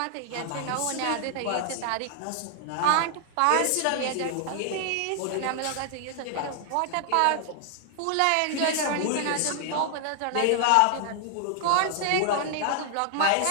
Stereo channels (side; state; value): both; different; correlation 0.00